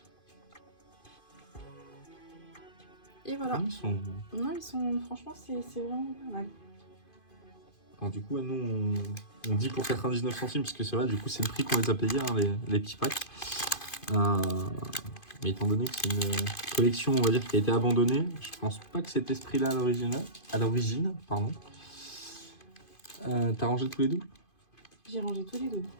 Et voilà. Non, ils sont... Franchement, c'est vraiment pas mal. Alors du coup, nous, on dit pour 99 centimes, parce que c'est vrai, du coup, c'est le prix qu'on les a payés, hein, les petits packs. Mais étant donné que c'est une collection, on va dire, qui a été abandonnée, je pense pas que cet esprit-là à l'origine, pardon. T'as rangé tous les doubles? J'ai rangé tous les doubles.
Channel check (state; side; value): late; right; 2.5 ms